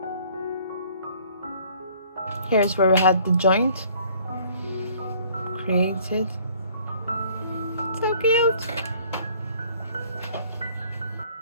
Here's where we had the joint created. So cute.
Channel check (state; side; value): inverted; both; correlation -0.56